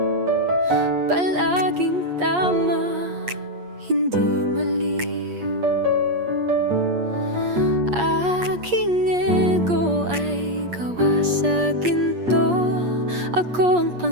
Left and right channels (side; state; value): left; late; 8.5 ms